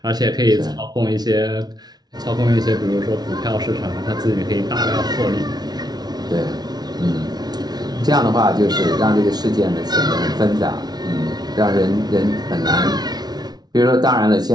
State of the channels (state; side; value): late; left; 0.19 ms